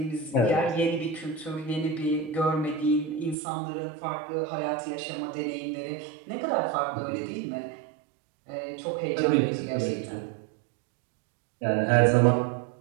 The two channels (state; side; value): drops out; left; at 3.4 s